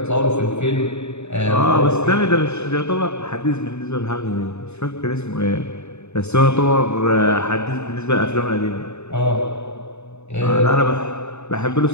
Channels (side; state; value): right; late; 0.81 ms